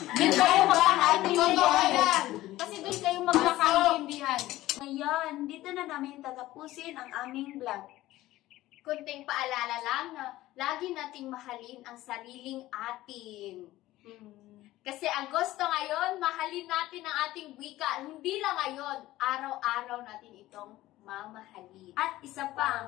kayo magkakaintindihan. Kasi doon kayo magkakaintindihan. Ngayon, dito na namin tatapusin ang aming vlog. Kunting paalala lang na lagi nating mahalin ang sariling atin. Kasi Agosto ngayon, mahalin natin ang ating wika. Hindi lang ngayon, araw-araw natin itong mamahalin. At isa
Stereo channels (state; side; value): quieter; right; 16.3 dB